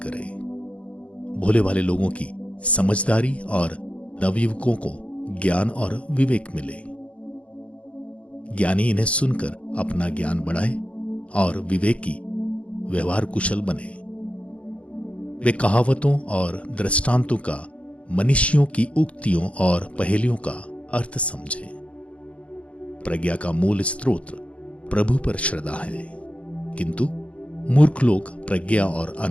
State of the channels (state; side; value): late; right; 0.063 ms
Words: करे, भोले भाले लोगों की समझदारी और नवयुवकों को ज्ञान और विवेक मिले। ज्ञानी इन्हें सुनकर अपना ज्ञान बढ़ाए और विवेकी व्यवहार कुशल बने। वे कहावतों और दृष्टांतों का, मनीषियों की उक्तियों और पहेलियों का अर्थ समझे। प्रज्ञा का मूल स्रोत प्रभु पर श्रद्धा है, किंतु मूर्ख लोग प्रज्ञा और